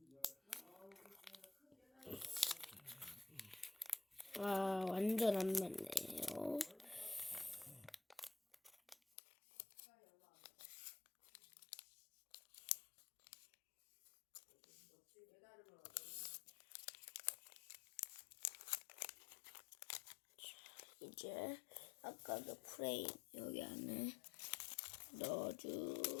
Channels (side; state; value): right; drops out; at 9.0 s